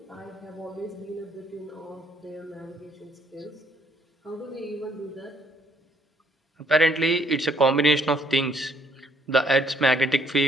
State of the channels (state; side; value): normal; both; correlation 0.66